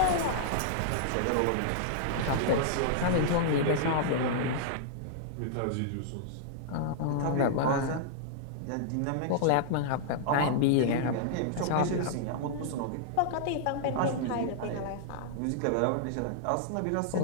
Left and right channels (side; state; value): both; different; correlation -0.01